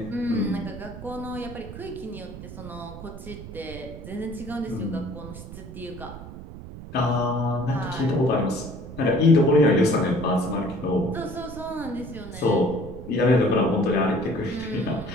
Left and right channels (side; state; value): right; noise; rumble, 12 dB below the sound